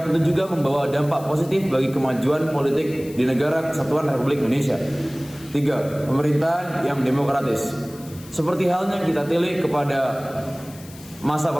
tentu juga membawa dampak positif bagi kemajuan politik di negara Kesatuan Republik Indonesia. Tiga, pemerintahan yang demokratis. Seperti halnya kita tilik kepada masa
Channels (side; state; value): left; noise; hiss, 20 dB below the sound